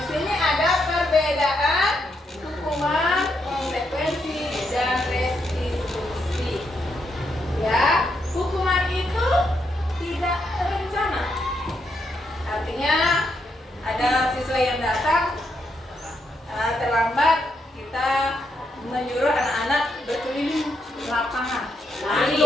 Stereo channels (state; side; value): normal; both; correlation 0.79